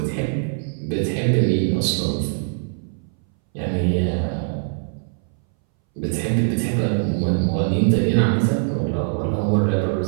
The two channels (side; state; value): left; silent; 62 dB below the other